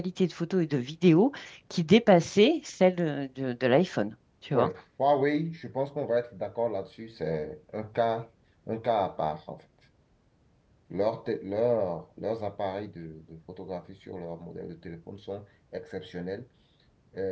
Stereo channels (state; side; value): identical; both; correlation 1.00